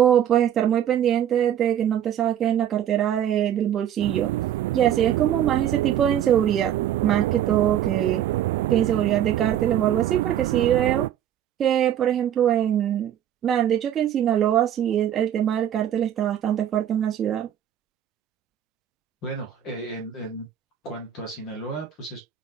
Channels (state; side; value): quieter; left; 10.5 dB